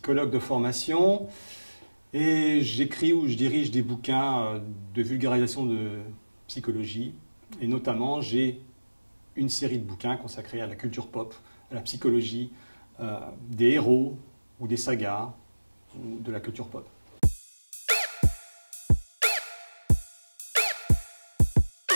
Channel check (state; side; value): inverted; both; correlation -1.00